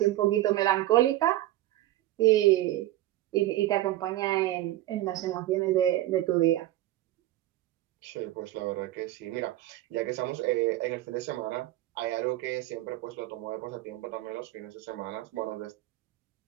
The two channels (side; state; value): left; quieter; 15.2 dB